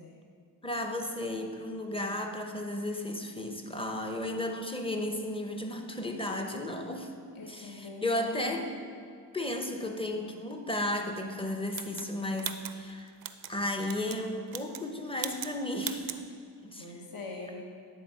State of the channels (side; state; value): both; normal; correlation 0.27